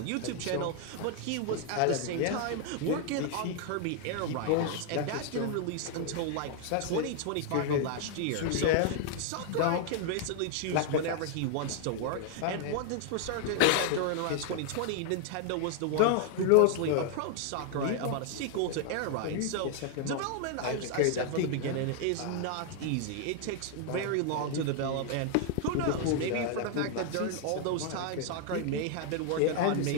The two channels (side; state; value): both; different; correlation 0.00